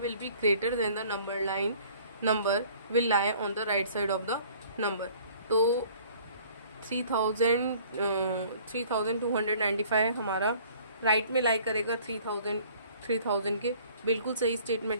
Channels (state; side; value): inverted; both; correlation -0.53